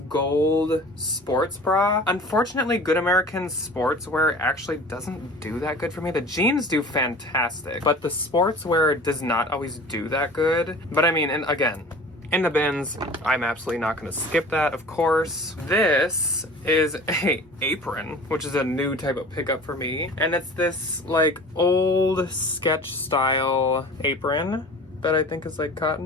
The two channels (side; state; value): both; normal; correlation 0.42